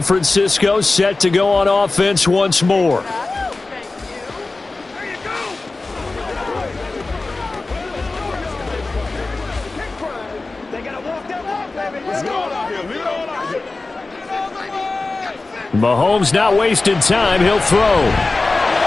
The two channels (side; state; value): right; quieter; 3.4 dB